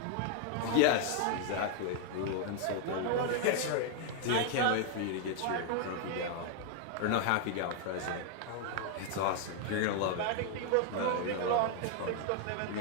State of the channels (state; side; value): different; both; correlation 0.00